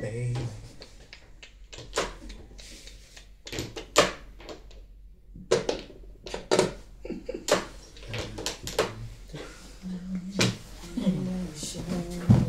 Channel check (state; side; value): identical; both; correlation 1.00